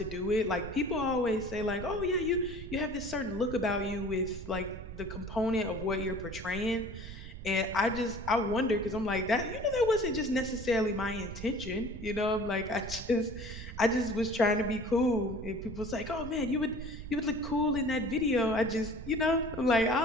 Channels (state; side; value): noise; right; rumble, 10 dB below the sound